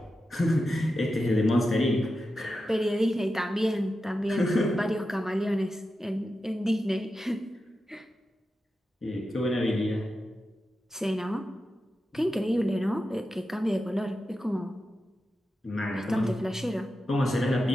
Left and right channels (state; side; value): normal; both; correlation 0.90